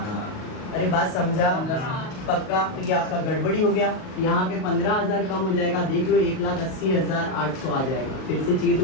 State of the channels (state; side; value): late; right; 38 ms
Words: अरे बात समझा? पक्का? तो ये आपका गड़बड़ी हो गया, यहाँ पे 15,000 कम हो जाएगा, देख लो 1,80,800 आ जाएगा। फिर से चाहिए